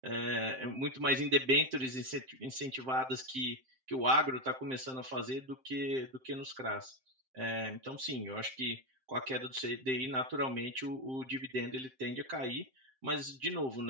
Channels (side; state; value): left; late; 7.6 ms